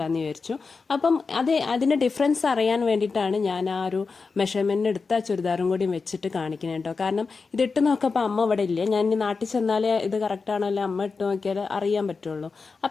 വിചാരിച്ചു. അപ്പം അതിൻ്റെ ഡിഫറൻസ് അറിയാൻ വേണ്ടിയിട്ടാണ് ഞാൻ ആ ഒരു മെഷർമെൻറ്റ് എടുത്ത ചുരിദാറും കൂടി വെച്ചിട്ട് കാണിക്കുന്നത് കേട്ടോ. കാരണം ഇതിട്ട് നോക്കപ്പോൾ അമ്മ ഇവിടെ ഇല്ല. ഞാൻ ഇനി നാട്ടിൽ ചെന്നാലേ ഇത് കറക്റ്റാണോ അല്ലെ അമ്മ ഇട്ട് നോക്കിയാൽ അറിയാൻ പറ്റുള്ളൂ.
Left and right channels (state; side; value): quieter; right; 4.6 dB